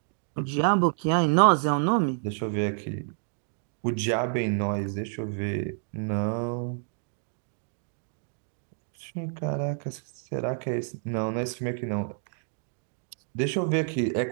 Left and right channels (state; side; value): silent; left; 59 dB below the other